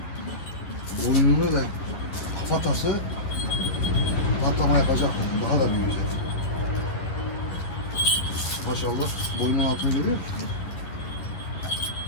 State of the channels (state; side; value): late; right; 11 ms